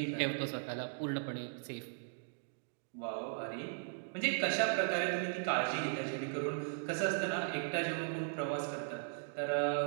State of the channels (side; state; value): left; silent; digital silence